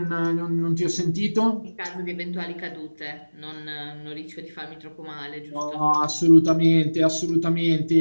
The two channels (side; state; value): both; inverted; correlation -1.00